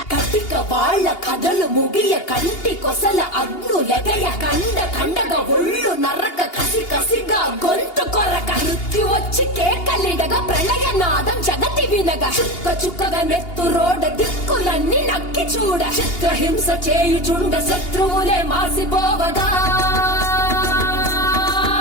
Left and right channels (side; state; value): right; late; 2.8 ms